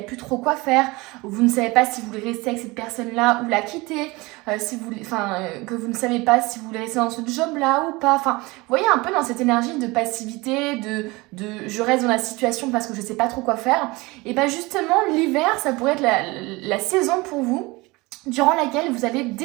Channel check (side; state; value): left; quieter; 23.3 dB